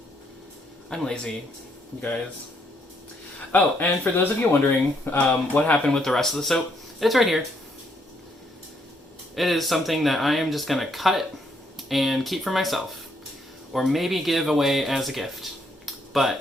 I'm lazy, you guys. Oh, and for those of you wondering what happened with the rest of the soap, it's right here. It is something that I am just going to cut and keep for myself, or maybe give away as a gift.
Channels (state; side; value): normal; both; correlation 0.72